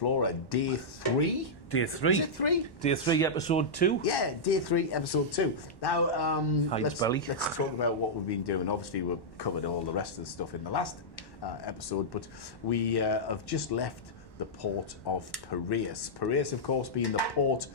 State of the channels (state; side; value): late; right; 1.1 ms